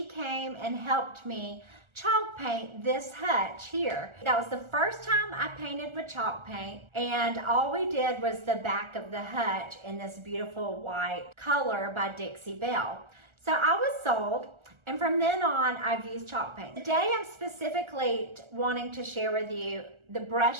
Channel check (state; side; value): late; left; 1.4 ms